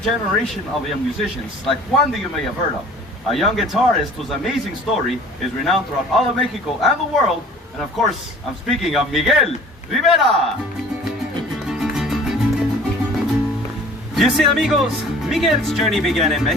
of young musicians, like one that you may have heard of, a young guitarist whose amazing story is renowned throughout all of Mexico and the world, and of course, I'm speaking of Miguel Rivera. You see, amigos, Miguel's journey began in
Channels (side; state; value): both; normal; correlation 0.48